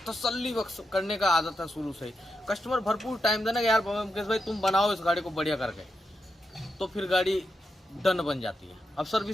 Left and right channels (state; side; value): normal; both; correlation 0.86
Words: तसल्ली बख्श करने का आदत है शुरू से ही। कस्टमर भरपूर टाइम देना कि यार मुकेश भाई तुम बनाओ इस गाड़ी को बढ़िया करके, तो फिर गाड़ी डन बन जाती है। अब